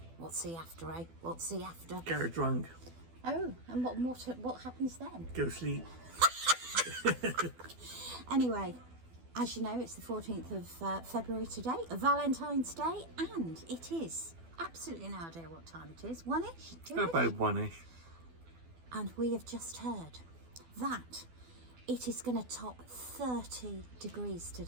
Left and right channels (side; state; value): left; late; 12 ms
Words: What's the after, eh? What's the after? Get her drunk. Oh, and what happens then? Go sleep. Anyway, as you know, it's the 14th of February today, Valentine's Day, and it is absolutely no idea what time it is. One-ish? Two-ish? About one-ish. And we have just heard that it is going to top 30 degrees